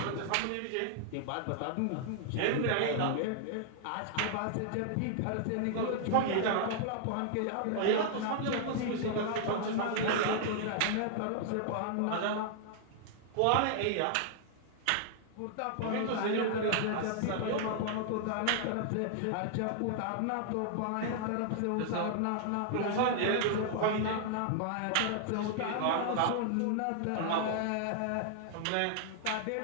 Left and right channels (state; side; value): different; both; correlation -0.01